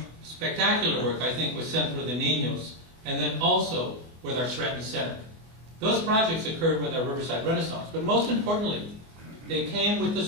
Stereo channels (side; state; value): left; late; 24 ms